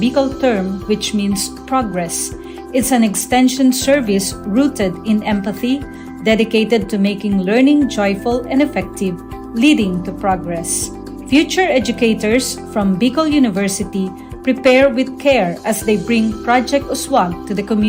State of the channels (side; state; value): both; identical; correlation 1.00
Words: term which means progress. It's an extension service rooted in empathy, dedicated to making learning joyful and effective, leading to progress. Future educators from Bicol University prepare with care as they bring Project Uswag to the